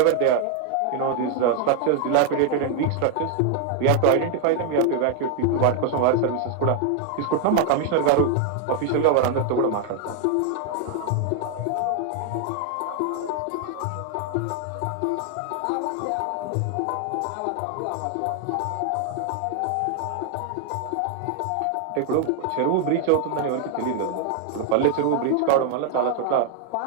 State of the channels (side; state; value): both; different; correlation 0.00